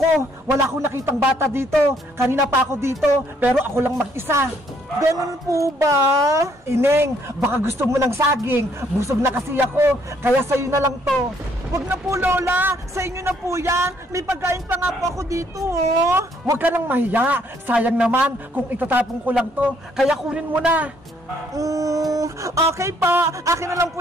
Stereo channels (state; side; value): normal; both; correlation 0.67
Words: Wala akong nakitang bata dito! Kanina pa ako dito, pero ako lang mag-isa! Ganun po ba? Ineng, baka gusto mo ng saging. Busog na kasi ako, kaya sa'yo na lang to. Huwag na po, Lola. Sa inyo na po yan. May pagkain pa nga po ako dito, oh. Huwag ka nang mahiya. Sayang naman kung itatapon ko lang to. Kaya kunin mo na. Okay pa. Akin na lang po